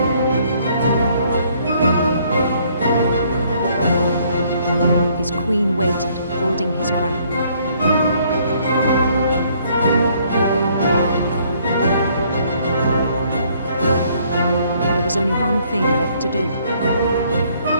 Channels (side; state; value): both; inverted; correlation -0.65